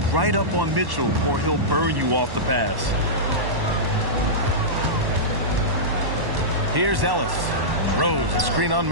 right up on Mitchell, or he'll burn you off the pass. Here's Ellis. Rose, a screen on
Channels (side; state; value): left; late; 1.1 ms